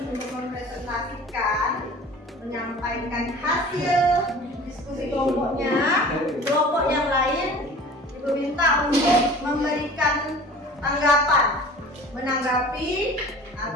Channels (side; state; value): both; normal; correlation 0.43